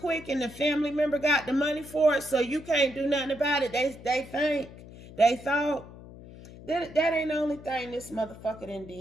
and the family member got the money for it, so you can't do nothing about it. They thought that ain't the only thing this motherfucker done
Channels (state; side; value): noise; left; hum, 17 dB below the sound